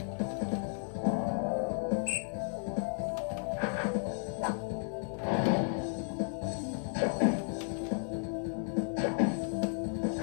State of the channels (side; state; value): right; silent; 55 dB below the other